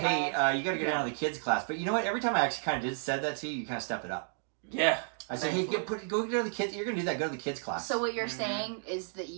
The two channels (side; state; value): left; silent; digital silence